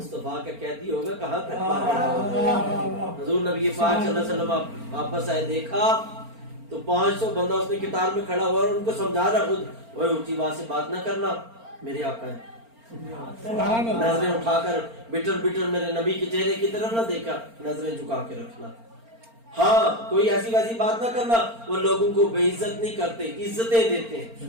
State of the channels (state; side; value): late; left; 4.4 ms